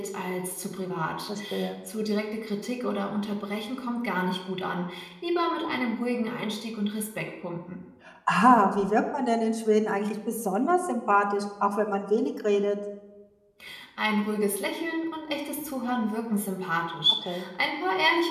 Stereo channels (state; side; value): identical; both; correlation 1.00